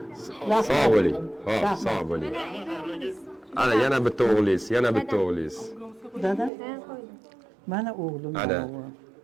Sog' bo'ling. Xo'p, sog' bo'ling. Ana yana bitta o'g'lingiz. Dada. Mana o'g'lim. Ana.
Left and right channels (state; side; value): drops out; left; at 6.5 s